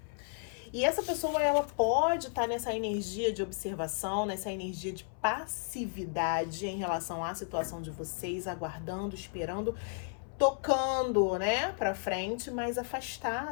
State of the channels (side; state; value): right; silent; 56 dB below the other